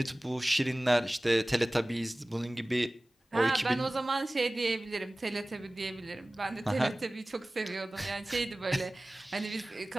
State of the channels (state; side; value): normal; both; correlation 0.98